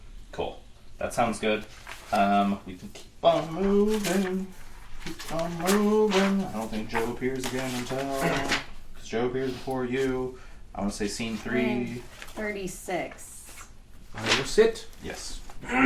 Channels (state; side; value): identical; both; correlation 1.00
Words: Cool. That sounds good. We can keep on moving. Keep on moving. I don't think Joe appears again until... Because Joe appears before you. I want to say scene 3. 36. I will sit. Yes.